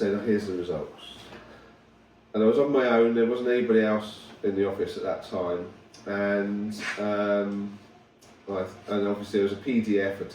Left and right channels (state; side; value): identical; both; correlation 1.00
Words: oh, here's the results. And I was on my own, there wasn't anybody else in the office at that time, and obviously there was a PDF